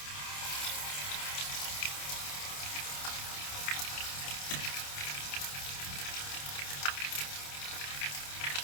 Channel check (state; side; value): late; right; 28 ms